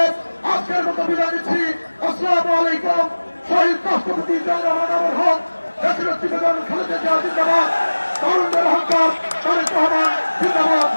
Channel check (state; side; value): inverted; both; correlation -1.00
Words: আজকের মতো বিদায় নিচ্ছি। আসসালামু আলাইকুম। শহীদ রাষ্ট্রপতি জিয়াউর রহমান হক, দেশনেত্রী বেগম খালেদা জিয়া জিন্দাবাদ, তরুণদের অহংকার তারেক রহমান জিন্দাবাদ,